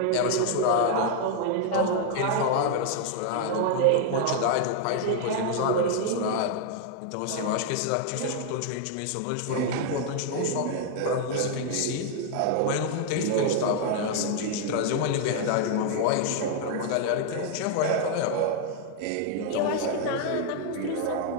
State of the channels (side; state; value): both; different; correlation 0.00